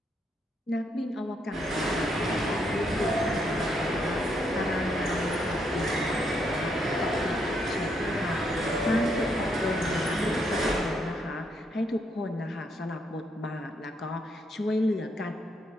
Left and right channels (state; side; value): normal; both; correlation 0.75